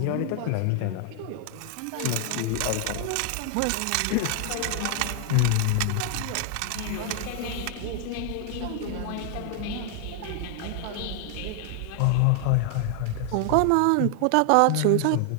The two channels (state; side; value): different; both; correlation 0.00